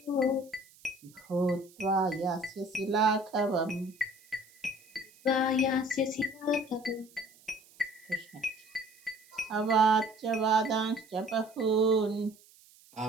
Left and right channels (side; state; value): right; noise; hiss, 27 dB below the sound